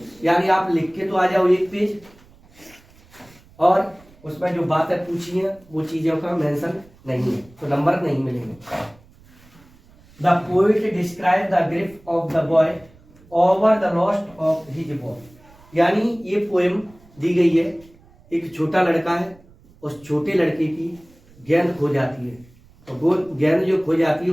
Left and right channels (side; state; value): right; noise; rumble, 27 dB below the sound